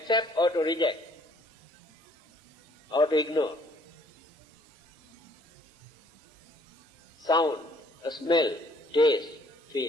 or to reject, or to ignore. Sound, a smell, taste,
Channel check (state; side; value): normal; both; correlation 0.61